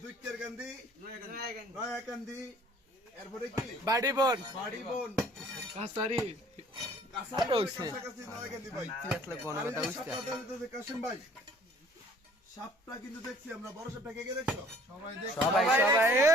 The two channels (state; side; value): normal; both; correlation 0.55